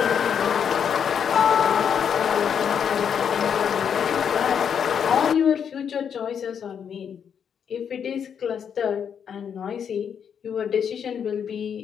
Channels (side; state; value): right; quieter; 7.7 dB